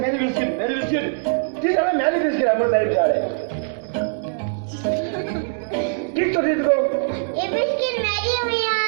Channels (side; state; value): left; silent; 64 dB below the other